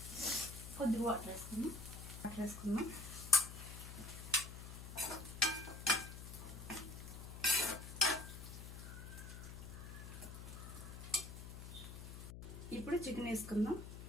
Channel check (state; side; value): noise; left; hum, 10 dB below the sound